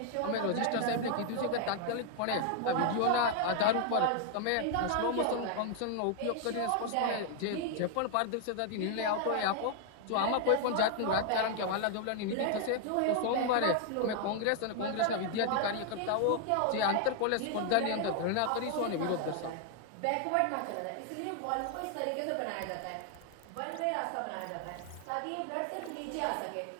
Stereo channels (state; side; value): different; both; correlation 0.00